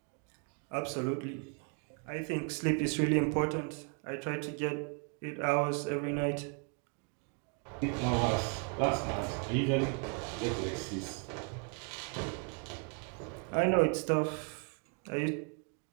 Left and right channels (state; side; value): quieter; left; 37.6 dB